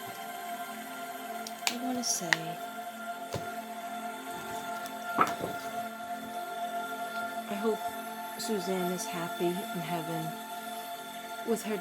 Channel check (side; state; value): both; identical; correlation 1.00